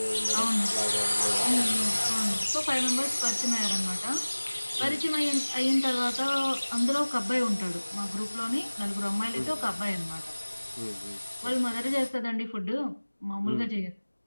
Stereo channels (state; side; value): inverted; both; correlation -1.00